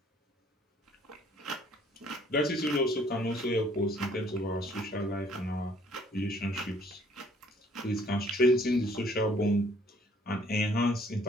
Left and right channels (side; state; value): both; normal; correlation 0.60